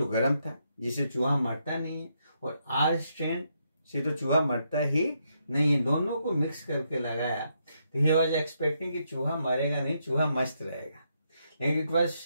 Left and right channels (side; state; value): both; inverted; correlation -0.78